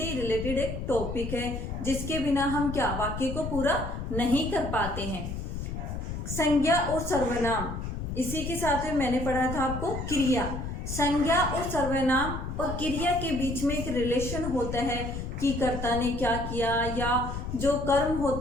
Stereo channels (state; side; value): noise; left; rumble, 5 dB below the sound